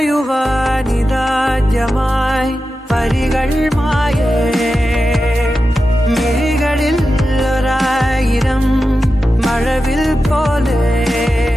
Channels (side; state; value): both; normal; correlation 0.92